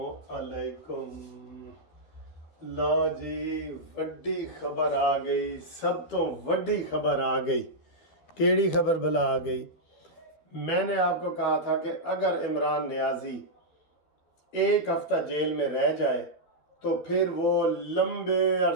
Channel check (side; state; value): right; late; 12 ms